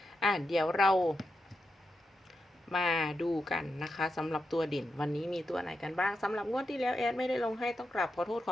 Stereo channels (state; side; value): normal; both; correlation 0.87